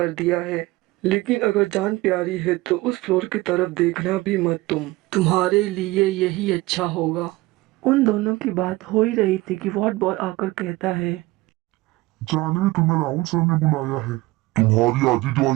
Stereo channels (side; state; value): left; quieter; 19.9 dB